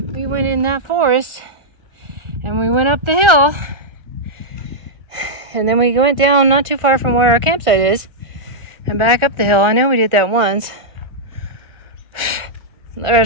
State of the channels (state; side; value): late; left; 1.3 ms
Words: went in that forest and we went up the hill. And then we went down not too far from where our campsite is and back up the hill. I know we did that once.